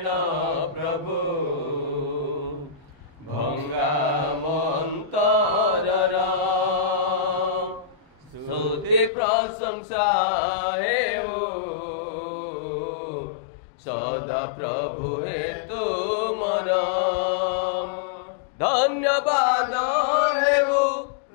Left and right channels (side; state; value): right; drops out; at 9.1 s